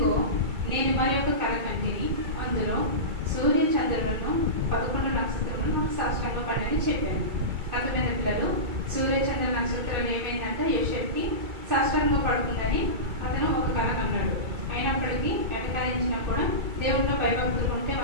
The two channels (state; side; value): late; left; 2.3 ms